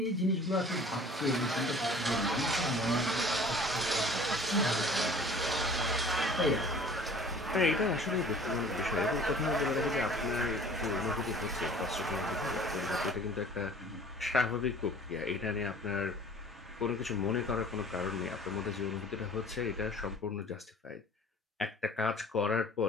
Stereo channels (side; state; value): both; normal; correlation 0.48